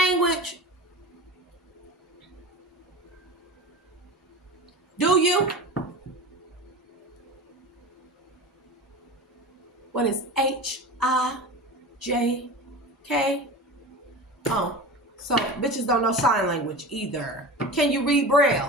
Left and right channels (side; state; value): both; normal; correlation 0.32